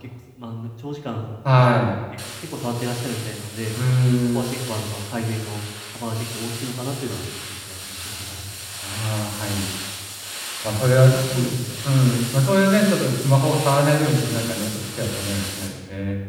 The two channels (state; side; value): identical; both; correlation 1.00